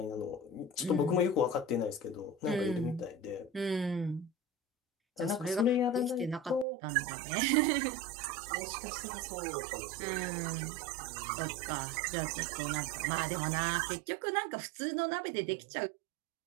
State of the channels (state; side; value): drops out; left; at 6.7 s